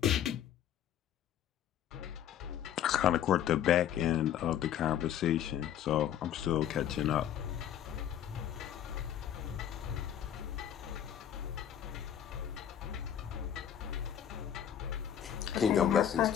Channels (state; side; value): quieter; right; 10.1 dB